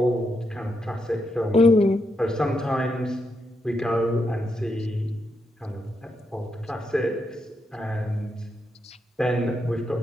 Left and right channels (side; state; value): both; normal; correlation 0.82